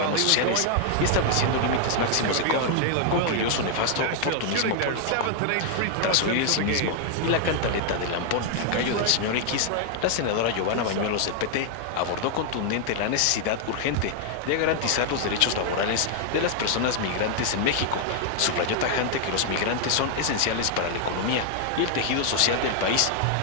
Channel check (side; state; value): both; different; correlation 0.00